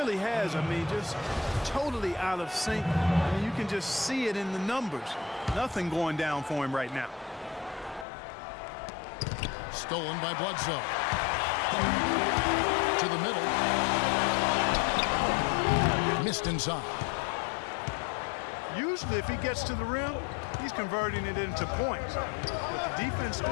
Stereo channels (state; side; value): drops out; right; at 8.1 s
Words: has. I mean, just totally out of sync. I mean, you can just see it in the numbers. Nothing going down for him right now. Stolen by Bledsoe. To the middle. Missed inside. Usually, if he gets to the rim, he's converting it into points. But the defense